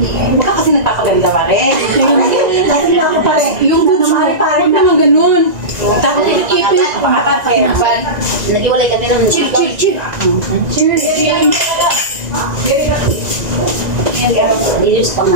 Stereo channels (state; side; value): late; left; 1.9 ms